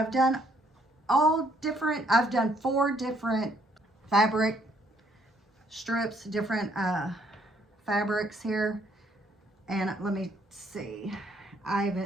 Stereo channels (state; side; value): normal; both; correlation 0.67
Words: done I've done 4 different fabric strips, different fabrics here. And let me see.